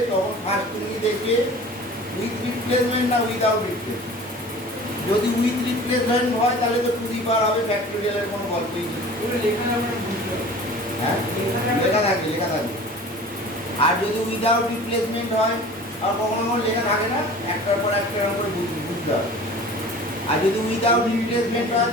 তখন ফার্স্ট তুমি দেখবে উইথ রিপ্লেসমেন্ট না উইদাউট রিপ্লেসমেন্ট। যদি উইথ রিপ্লেসমেন্ট হয় তাহলে তো টু দি পাওয়ার হবে, ফ্যাক্টোরিয়ালের কোনো গল্পই নেই। হ্যাঁ, লেখা থাকবে, লেখা থাকবে। আর যদি উইদাউট রিপ্লেসমেন্ট হয়, আর কখনো কখনো লেখা থাকে না, একটার পর একটা করে বুঝতে হবে। আর যদি উইদাউট রিপ্লেসমেন্ট হয়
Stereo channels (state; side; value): normal; both; correlation 0.42